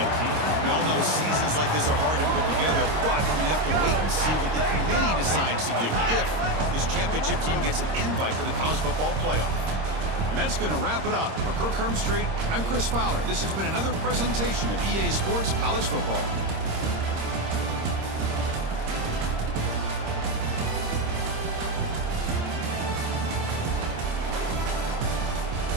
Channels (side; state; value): left; late; 26 ms